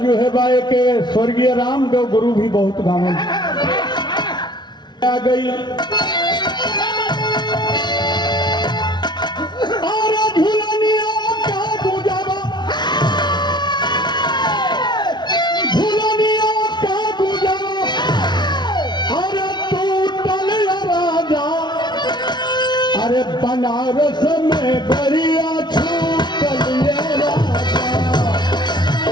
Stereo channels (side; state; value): right; late; 0.21 ms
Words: है बाए के स्वर्गीय रामदेव गुरु भी बहुत गावन आ गई। अरे बनारस में गरिया छू